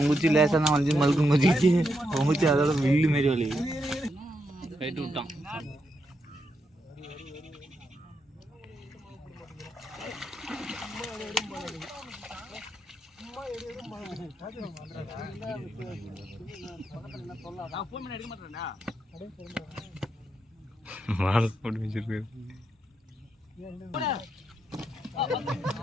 குச்சி லேசாக தான் வளைஞ்சு மழுக்கு மதிச்சு, அவன் குச்சி அதோட வில்லு மாரி வலி கைட்டு விட்டான். மாலை போட்டு வச்சிருக்கு.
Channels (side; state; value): both; normal; correlation 0.82